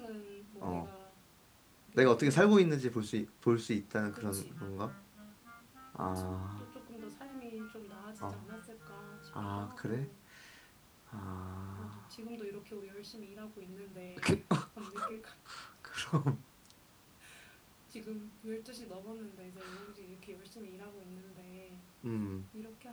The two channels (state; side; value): identical; both; correlation 1.00